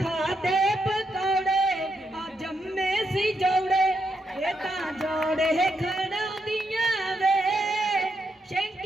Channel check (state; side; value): normal; both; correlation 0.81